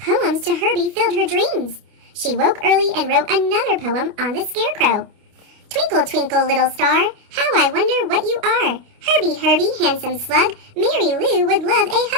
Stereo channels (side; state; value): left; late; 29 ms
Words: to Herbie filled her dreams. She woke early and wrote another poem on the scarecrow. Twinkle, twinkle, little star, how I wonder what you are. Herbie, Herbie, handsome slug, Mary Lou would love a